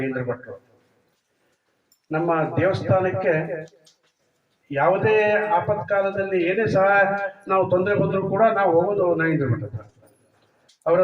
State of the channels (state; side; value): identical; both; correlation 1.00